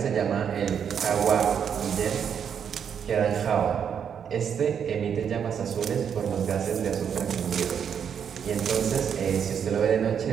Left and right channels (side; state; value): left; quieter; 7.8 dB